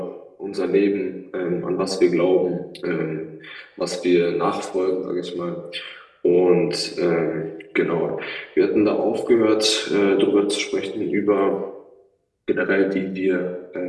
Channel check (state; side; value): identical; both; correlation 1.00